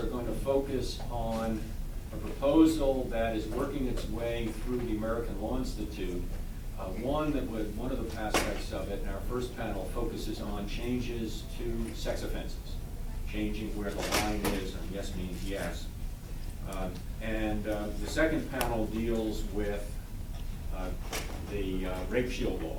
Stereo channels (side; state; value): both; identical; correlation 1.00